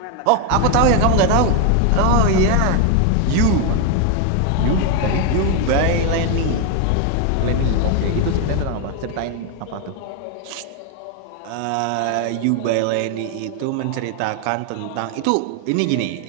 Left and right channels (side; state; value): both; different; correlation 0.01